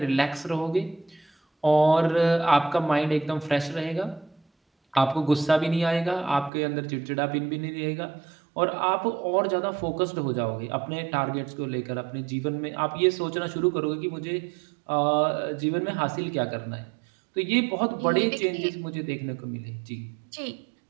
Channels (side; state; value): left; drops out; at 6.5 s